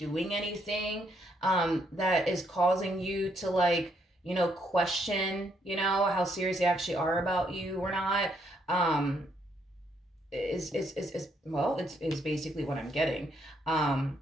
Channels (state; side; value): normal; both; correlation 0.73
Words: anything that is causing you to like, question, how serious they actually are about you or not. Is basically what I'm getting.